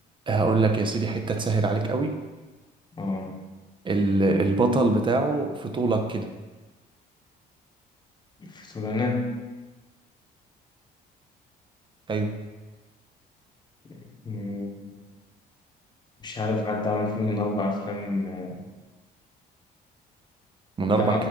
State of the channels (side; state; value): both; normal; correlation 0.60